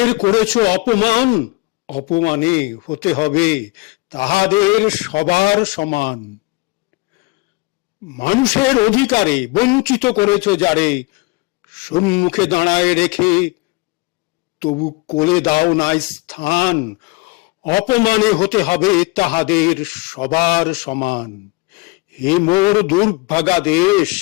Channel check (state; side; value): quieter; right; 23.6 dB